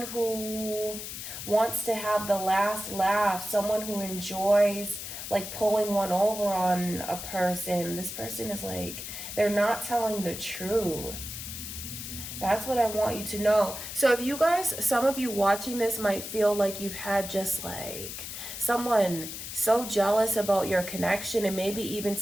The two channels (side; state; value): left; noise; hiss, 8 dB below the sound